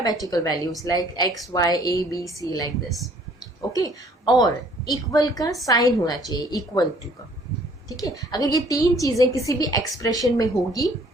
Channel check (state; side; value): normal; both; correlation 0.58